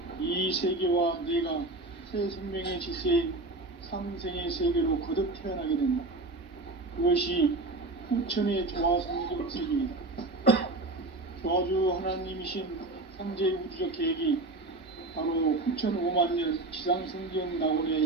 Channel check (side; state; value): left; quieter; 3.0 dB